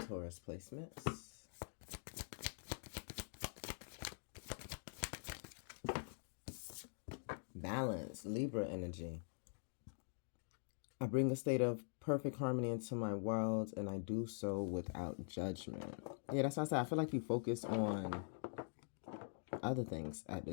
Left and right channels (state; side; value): silent; right; digital silence